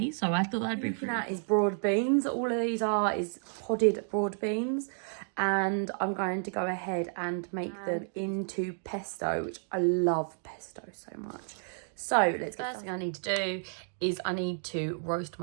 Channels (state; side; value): silent; left; 57 dB below the other